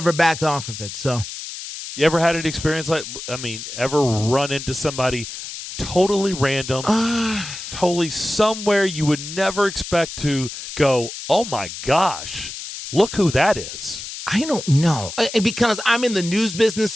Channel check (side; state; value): left; noise; hiss, 9 dB below the sound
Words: backed off of it. So, you ever had an experience ever run into somebody totally random, totally somewhere you would never expect to go, oh, my gosh, look who that is? I don't know. Because I'm in the news business,